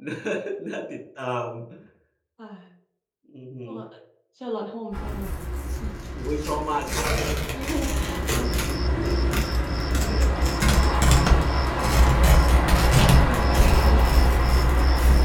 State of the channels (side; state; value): both; identical; correlation 1.00